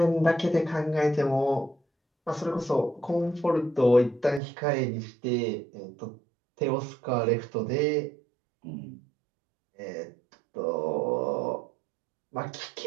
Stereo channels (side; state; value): left; drops out; at 4.4 s